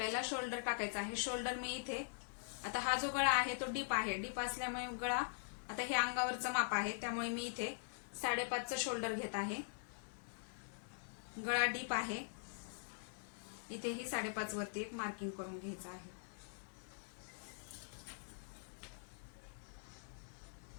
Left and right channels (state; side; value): silent; right; digital silence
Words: शोल्डर टाकायचा आहे। शोल्डर मी इथे, आता हा जो गळा आहे तो डीप आहे, डीप असल्यामुळे गळा, आता हे अंगावरचं माप आहे त्यामुळे मी इथे 5.5चं शोल्डर घेत आहे। गळा डीप आहे, इथे ही 5.5 वरती एक मार्किंग करून घ्यायचं आहे।